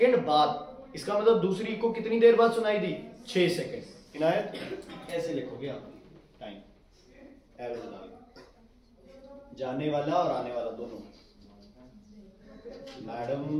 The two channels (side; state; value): both; identical; correlation 1.00